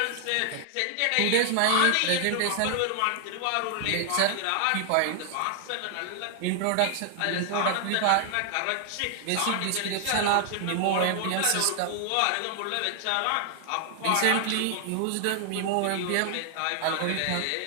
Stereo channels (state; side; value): different; both; correlation 0.00